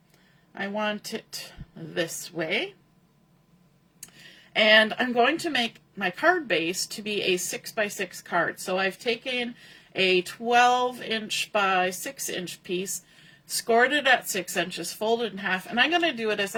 I want it this way. And I'm going to make my card base to be a 6x6 card. So I've taken a 12-inch by 6-inch piece, scored it at 6 inches, folded in half, and I'm going to do it as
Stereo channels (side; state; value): both; identical; correlation 1.00